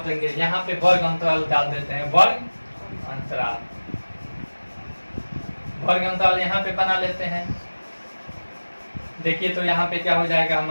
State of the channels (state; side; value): inverted; both; correlation -1.00